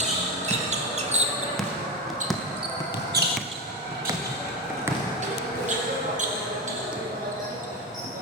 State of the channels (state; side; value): normal; both; correlation 0.17